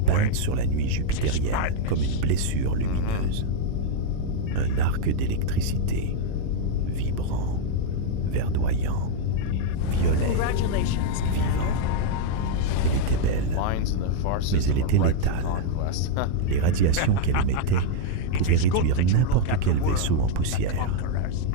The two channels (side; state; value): both; different; correlation 0.00